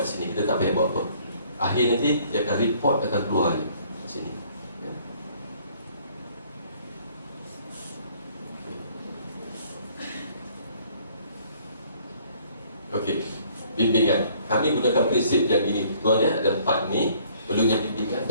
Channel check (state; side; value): inverted; both; correlation -0.60